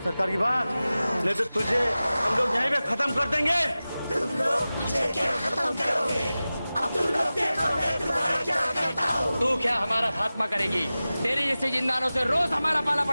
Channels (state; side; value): inverted; both; correlation -0.96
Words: सरकार की बात, नहीं तो तुझे हम लोग यहीं पे खत्म कर देंगे। तुम लोग मुझे क्या खत्म करोगे? अब तुम लोग देखो मैं तुम्हारा क्या करता हूँ। तू क्या हमारा खात्मा करेगी? तेरे जैसे जिंदानों से रोज हमारा पाला